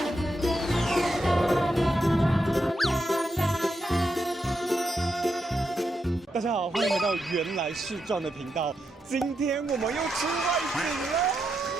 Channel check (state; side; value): normal; both; correlation 0.84